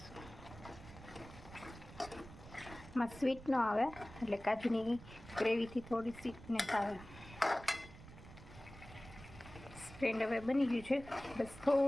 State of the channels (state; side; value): noise; right; rumble, 16 dB below the sound